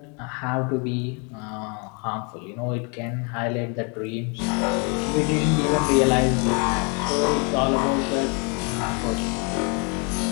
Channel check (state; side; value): quieter; right; 34.6 dB